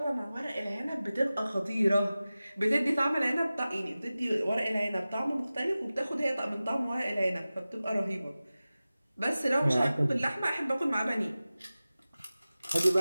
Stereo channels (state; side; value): inverted; both; correlation -0.96